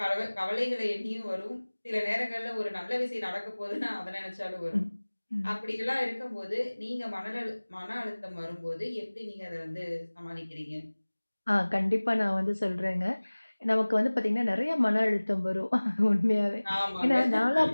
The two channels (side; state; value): both; inverted; correlation -1.00